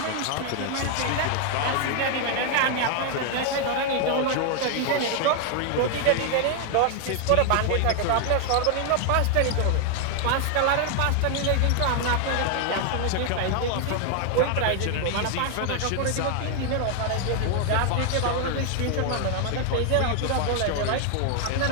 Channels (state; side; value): different; both; correlation 0.00